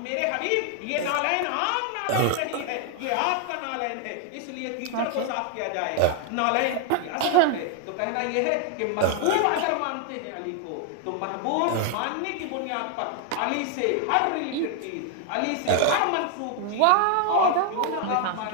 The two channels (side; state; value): both; different; correlation 0.00